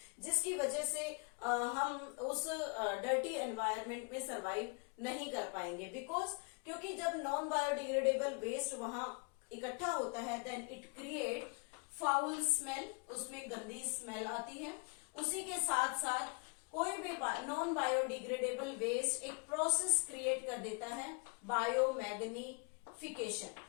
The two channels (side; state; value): right; quieter; 34.5 dB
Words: जिसकी वजह से हम उस डर्टी एनवायरनमेंट में सरवाइव नहीं कर पाएंगे. बिकॉज क्योंकि जब नॉन बायोडिग्रेडेबल वेस्ट वहां इकट्ठा होता है then it create foul smell, उसमें गंदी स्मेल आती है. उसी के साथ साथ कोई भी नॉन बायोडिग्रेडेबल वेस्ट एक प्रोसेस क्रिएट कर देता है biomagnification.